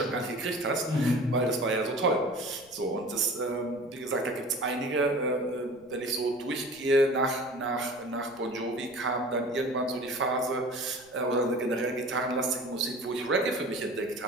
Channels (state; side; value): noise; right; rumble, 30 dB below the sound